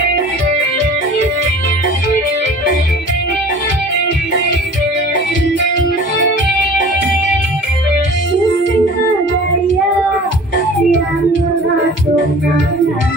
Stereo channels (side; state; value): both; normal; correlation 0.44